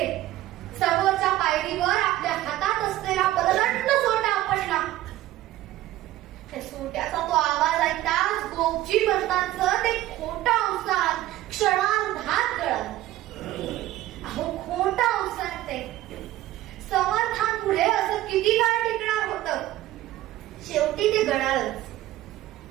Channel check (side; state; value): left; quieter; 15.1 dB